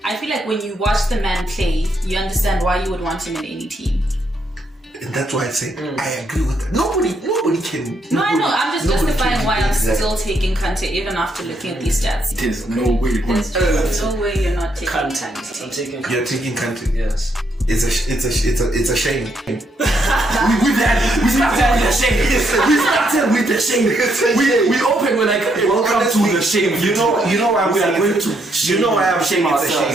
I feel like when you watch the man play, you understand why you would want him in any team. And that's why I say I agree with that. Nobody can. No, I know. I'm just justifying why I'm still taking Kante even after looking at these stats. There's no way. There's no way you're not taking Kante. I'm taking Kante. You're taking Kante. Yes. It's a shame. We started with the shame. We opened with like, welcome to the shame. You know why we are going to. You know why I'm saying it's a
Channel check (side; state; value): both; normal; correlation 0.75